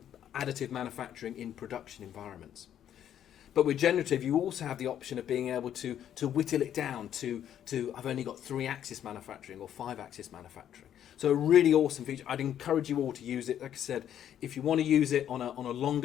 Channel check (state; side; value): quieter; right; 10.3 dB